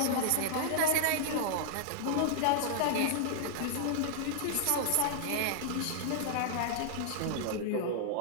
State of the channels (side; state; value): both; different; correlation -0.01